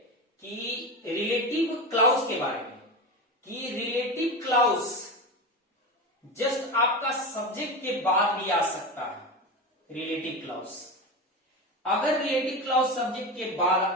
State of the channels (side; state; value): both; normal; correlation 0.22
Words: कि रिलेटिव क्लाउज के बारे में, कि रिलेटिव क्लाउज जस्ट आपका सब्जेक्ट के बाद भी आ सकता है। रिलेटिव क्लाउज, अगर रिलेटिव क्लाउज सब्जेक्ट के बाद